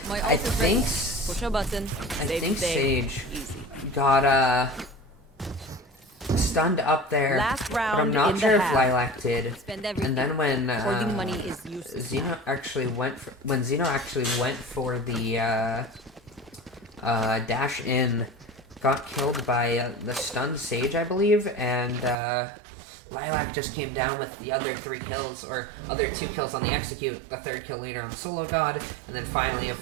I think Sage got stunned up there, but I'm not sure if Lilac did. And then when Zeno actually went for the dash in, got killed by the stunned Sage, I believe, and Lilac just came down with the other 3 kills, or other 2 kills on the execute, the 3rd kill later on sologod, and then finally a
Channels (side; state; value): left; drops out; at 22.2 s